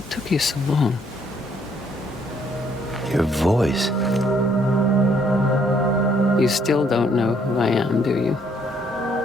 took you so long? Your voice. You still don't know who I am, do you?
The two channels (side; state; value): both; normal; correlation 0.67